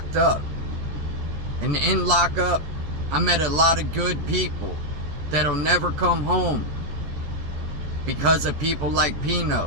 up. And in lockup, I met a lot of good people that'll never come home because of people like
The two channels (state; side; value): late; left; 14 ms